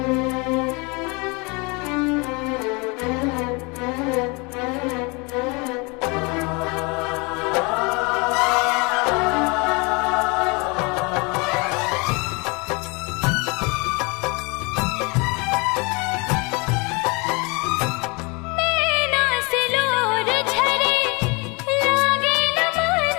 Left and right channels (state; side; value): quieter; right; 28.6 dB